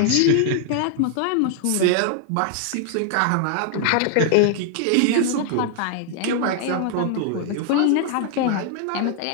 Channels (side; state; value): both; different; correlation 0.00